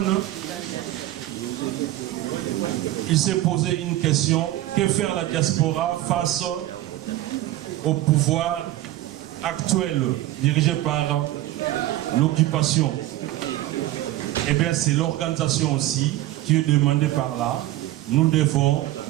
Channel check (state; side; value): quieter; left; 15.2 dB